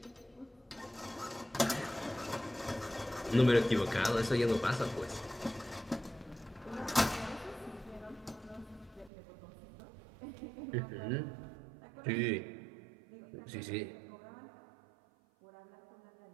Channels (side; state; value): left; drops out; at 9.1 s